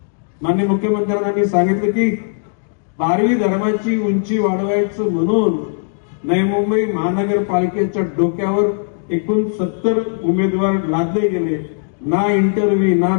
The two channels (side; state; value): right; silent; digital silence